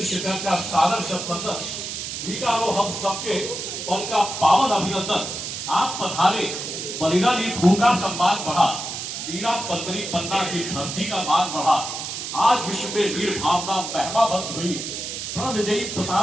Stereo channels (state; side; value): noise; right; hiss, 6 dB below the sound